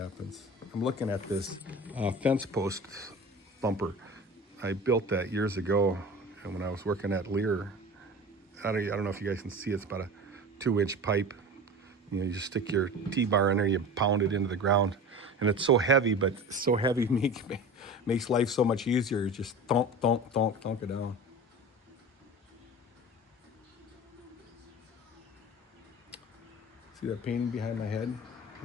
I'm looking at this fence post thumper. I built that years ago, and when I was working at Lear, I don't know if you guys can see. It's about a 2-inch pipe. You just stick your T-bar in there, you pound it into the ground, and it's so heavy, but so heavy makes life so much easier. You just thunk it down. See that painting behind my head?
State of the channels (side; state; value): both; normal; correlation 0.34